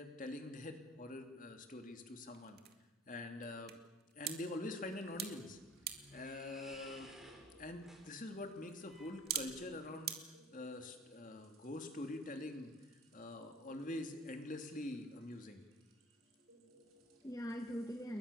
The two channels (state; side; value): normal; both; correlation 0.49